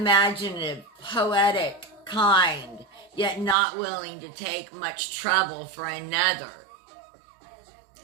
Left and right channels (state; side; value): drops out; left; at 3.6 s